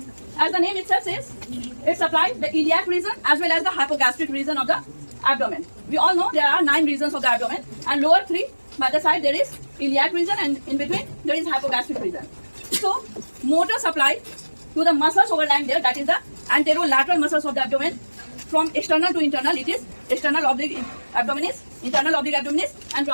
As the name itself says, it supplies the iliac region as well as the hypogastric region of the abdomen. We all know there are 9 regions of the abdomen, and lower 3 by the side there is iliac region, and in between there is hypogastric region. So motor supply to the muscles overlying there, that is the anterolateral muscles of the abdomen. From external to internal, it is external oblique abdominis, internal oblique abdominis, and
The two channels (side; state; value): both; inverted; correlation -1.00